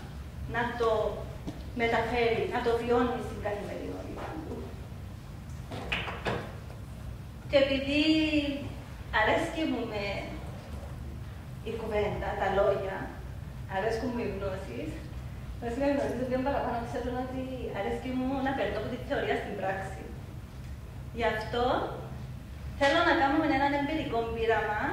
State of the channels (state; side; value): identical; both; correlation 1.00